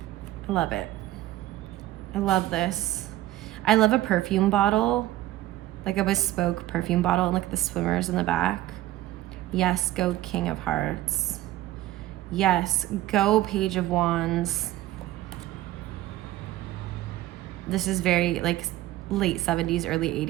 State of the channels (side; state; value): left; quieter; 15.2 dB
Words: love it. I love this. I love a perfume bottle, like a bespoke perfume bottle, and look at the swimmers in the back. Yes, go King of Hearts. Yes, go Page of Wands. This is very like late 70s, early